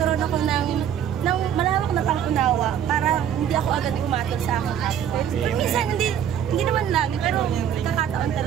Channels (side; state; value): left; quieter; 9.4 dB